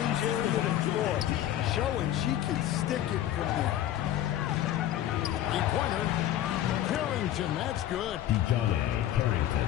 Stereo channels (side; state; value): right; quieter; 12.3 dB